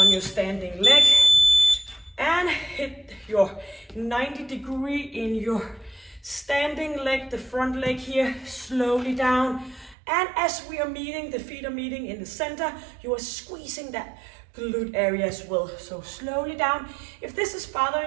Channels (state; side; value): drops out; left; at 10.0 s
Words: your standing leg, and hit your 90-degree in your standing leg, the front leg here, slowly down. And as we are meeting, the feet are meeting in the center, you are squeezing that glute area as well. So slowly down. If this is